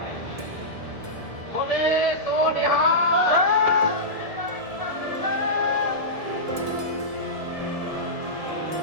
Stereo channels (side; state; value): left; late; 1.7 ms